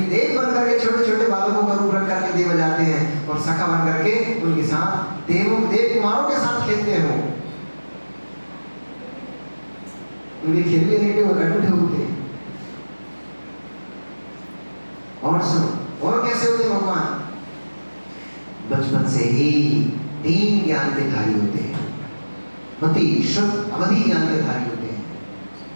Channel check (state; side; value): inverted; both; correlation -1.00